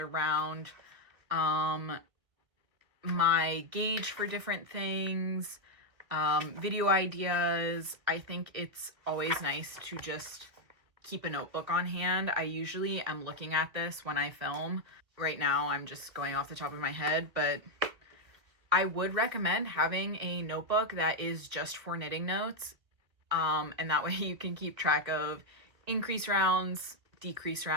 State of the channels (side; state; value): left; late; 2.1 ms